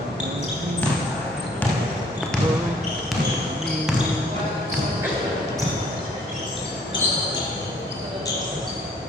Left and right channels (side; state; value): both; normal; correlation 0.60